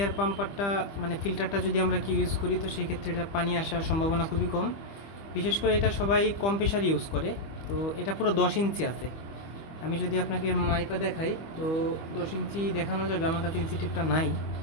পাম্পারটা মানে ফিল্টারটা যদি আমরা ইউজ করি তো সেই ক্ষেত্রে এটা পানি আসার সম্ভাবনা খুবই কম। বিশেষ করে এটা সবাই কম প্রেশার ইউজ করে। তো এটা পুরো 10 ইঞ্চি আছে। আমি যদি আপনাকে মাইপা দেখাই তো 10 ইঞ্চি দেখানো যাবে, আমার কাছে ইঞ্চি টিপটা নাই।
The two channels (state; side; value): late; right; 25 ms